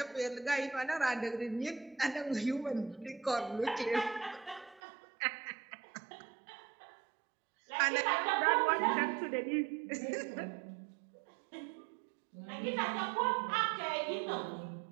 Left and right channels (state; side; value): drops out; left; at 4.8 s